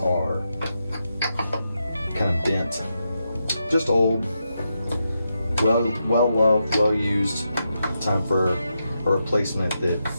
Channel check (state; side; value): inverted; both; correlation -0.85